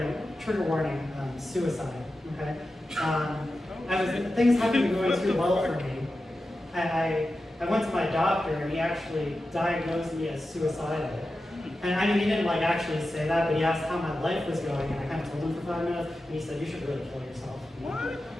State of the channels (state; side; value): normal; both; correlation 0.92